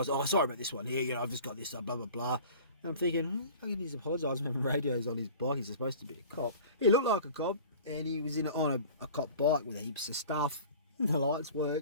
Oh, sorry about this one here. You know, I've just got this. Blah blah blah. And I'm thinking, he's apologising for having radios on his bike. He's supposed to be a cop. He looked like a cop, and he was on a cop bike with heaps of stuff. The lights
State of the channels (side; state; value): both; inverted; correlation -0.42